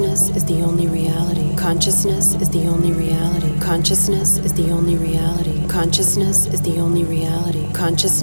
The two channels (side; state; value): both; inverted; correlation -1.00